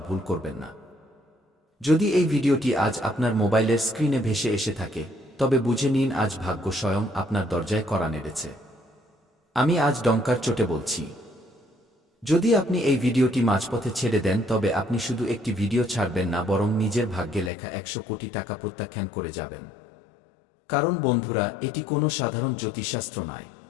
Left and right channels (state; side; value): drops out; right; at 17.5 s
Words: ভুল করবেন না। যদি এই ভিডিওটি আজ আপনার মোবাইলের স্ক্রিনে ভেসে এসে থাকে, তবে বুঝে নিন আজ ভাগ্য স্বয়ং আপনার দরজায় কড়া নেড়েছে। আমি আজ ডঙ্কার চোটে বলছি। যদি আপনি এই ভিডিওটি মাঝপথে ছেড়ে দেন, তবে আপনি শুধু একটি ভিডিও ছাড়বেন না, বরং নিজের ভাগ্যে লেখা 100 কোটি টাকা প্রত্যাখ্যান করে যাবেন। কারণ বন্ধুরা, এটি কোনো সাধারণ জ্যোতিষশাস্ত্র নয়,